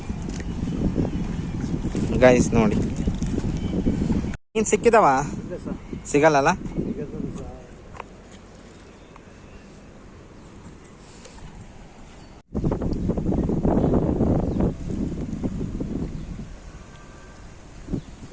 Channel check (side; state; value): both; identical; correlation 1.00